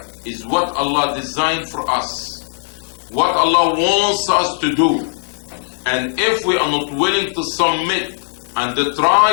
is what Allah designed for us, what Allah wants us to do. And if we are not willing to submit and to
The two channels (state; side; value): silent; right; digital silence